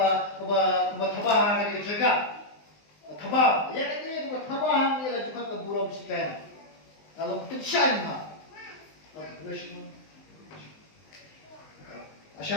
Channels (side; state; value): right; late; 19 ms